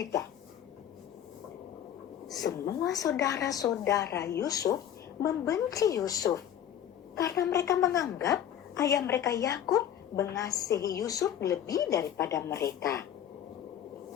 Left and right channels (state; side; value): quieter; right; 10.1 dB